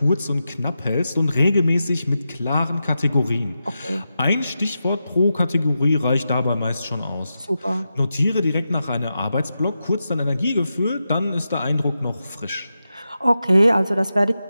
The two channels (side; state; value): both; inverted; correlation -0.89